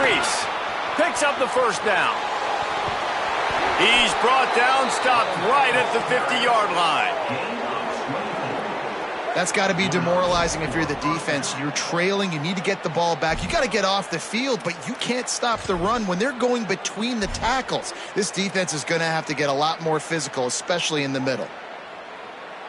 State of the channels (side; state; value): both; identical; correlation 1.00